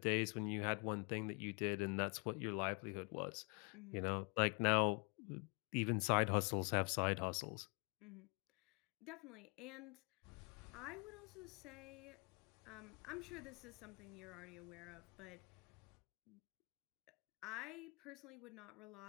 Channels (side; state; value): right; quieter; 32.7 dB